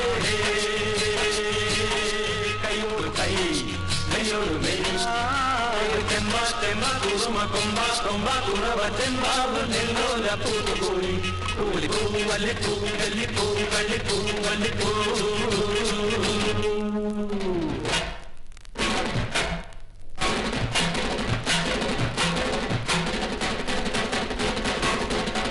കൈയോട് കൈ നെയ്യോട് നെയ് ചെമ്പ ചെമ്പ കുറുമ കൊമ്പ കൊമ്പ കുറവ ചെമ്പാവ് നെല്ലോല പൂത്തുപോയി പൂളിപ്പൂ വല്ലിപ്പൂ കല്ലിപ്പൂ കള്ളിപ്പൂ വല്ലിപ്പൂ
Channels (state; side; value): identical; both; correlation 1.00